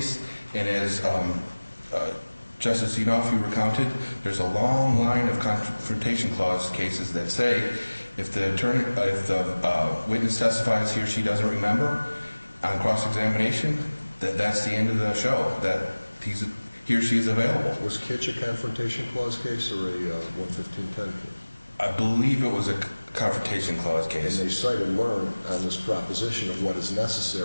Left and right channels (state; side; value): inverted; both; correlation -1.00